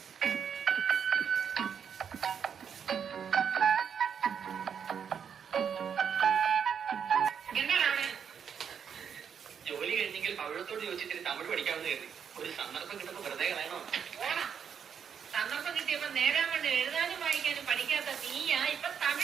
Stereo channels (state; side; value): quieter; left; 7.5 dB